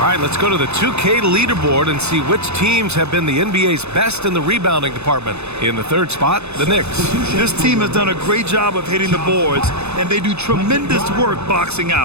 right, let's go to the 2K leaderboard and see which teams have been the NBA's best in the rebounding department. In the 3rd spot, the Knicks. This team has done a great job of hitting the boards, and they do tremendous work boxing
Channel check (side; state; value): left; late; 0.81 ms